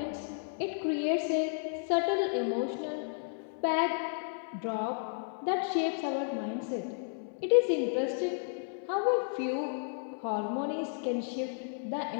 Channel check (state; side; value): silent; right; 56 dB below the other